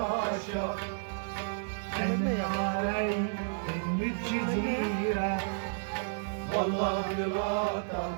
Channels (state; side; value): silent; left; digital silence